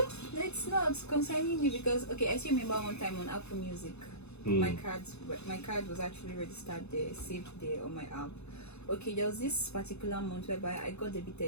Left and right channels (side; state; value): right; late; 0.80 ms